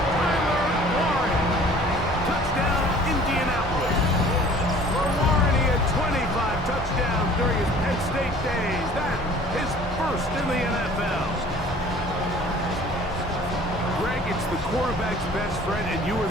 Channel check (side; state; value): both; normal; correlation 0.49